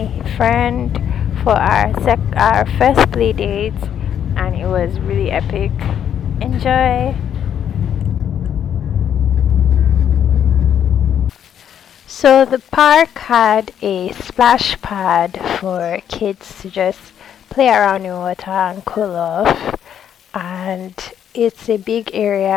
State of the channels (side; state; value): right; quieter; 9.3 dB